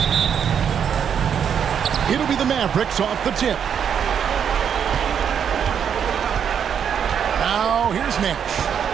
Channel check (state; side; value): quieter; left; 8.0 dB